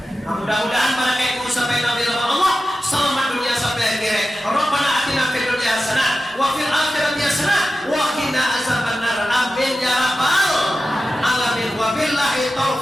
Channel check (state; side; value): normal; both; correlation 0.93